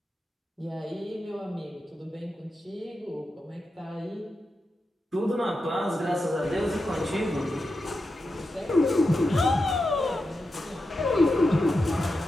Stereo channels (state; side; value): normal; both; correlation 0.89